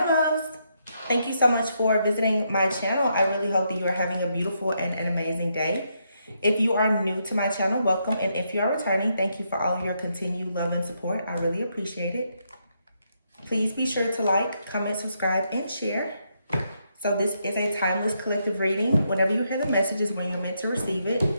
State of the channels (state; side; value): inverted; both; correlation -0.79